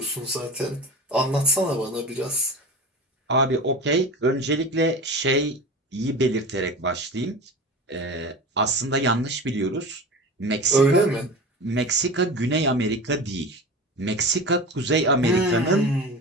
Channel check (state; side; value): normal; both; correlation 0.31